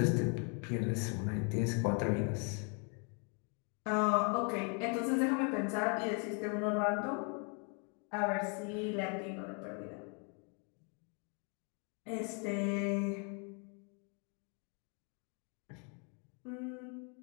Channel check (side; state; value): right; quieter; 37.7 dB